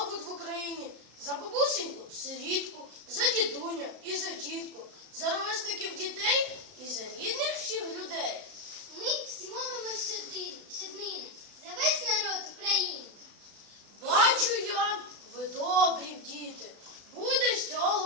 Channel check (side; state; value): left; late; 34 ms